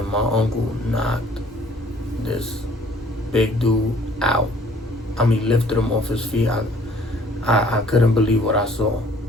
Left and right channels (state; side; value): normal; both; correlation 0.57